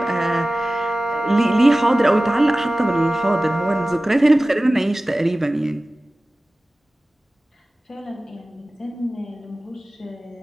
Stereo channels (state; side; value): normal; both; correlation 0.97